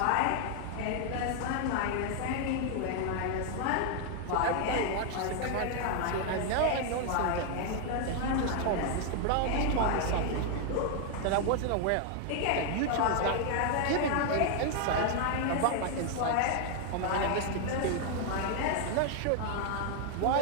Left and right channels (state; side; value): different; both; correlation 0.00